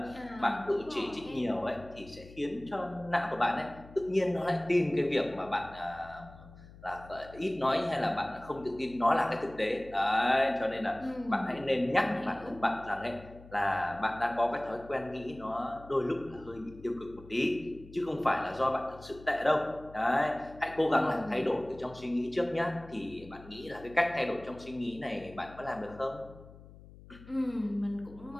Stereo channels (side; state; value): left; noise; hum, 19 dB below the sound